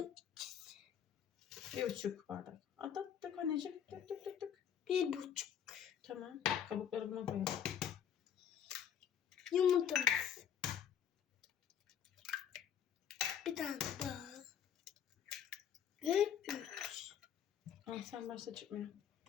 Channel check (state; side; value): quieter; right; 8.8 dB